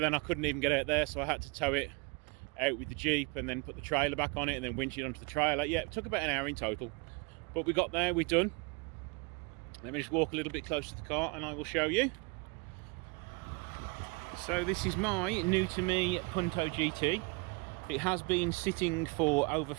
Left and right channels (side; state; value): left; quieter; 29.4 dB